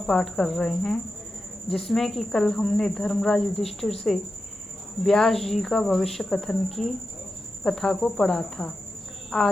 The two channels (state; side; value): normal; both; correlation 0.90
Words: कर रहे हैं, जिसमें कि कल हमने धर्मराज युधिष्ठिर से व्यास जी का भविष्य कथन की कथा को पढ़ा था।